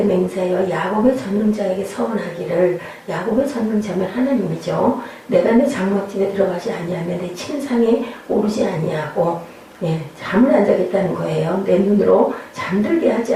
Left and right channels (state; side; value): identical; both; correlation 1.00